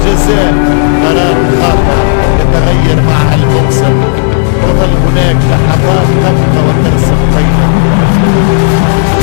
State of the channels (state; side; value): silent; right; 58 dB below the other